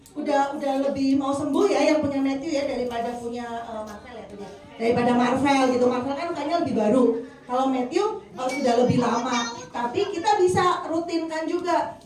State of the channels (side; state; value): both; identical; correlation 1.00